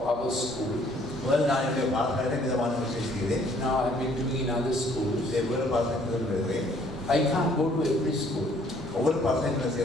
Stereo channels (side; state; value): both; normal; correlation 0.61